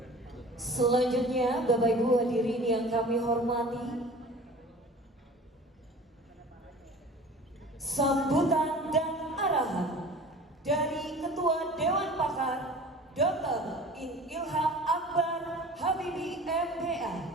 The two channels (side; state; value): both; normal; correlation 0.42